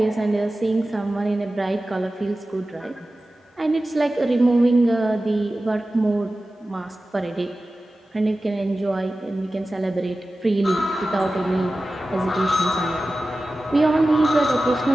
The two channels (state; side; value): normal; both; correlation 0.95